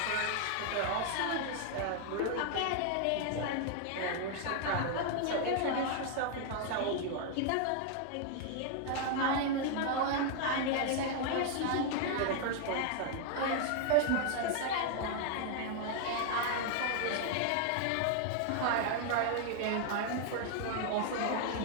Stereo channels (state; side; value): different; both; correlation 0.00